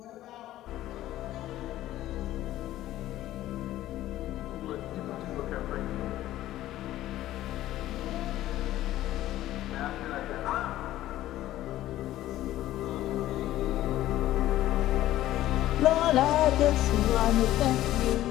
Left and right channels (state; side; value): quieter; right; 14.4 dB